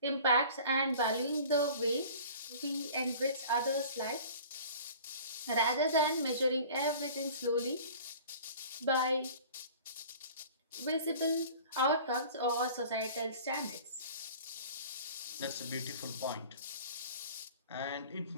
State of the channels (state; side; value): inverted; both; correlation -0.44